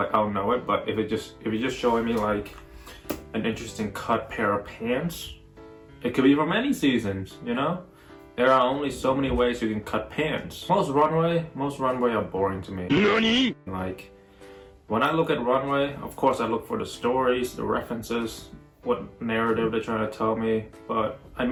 I'll know it. But if you're just showing me like an interesting cut pair of pants, it could be from any seasons, you know? There are only so many ways you can cut pants. Most runway are boring to me. NANI? Like, when I look at runway, of course I look for the stories, the references, what narrative they're trying to tell me, but I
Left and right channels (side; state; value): both; identical; correlation 1.00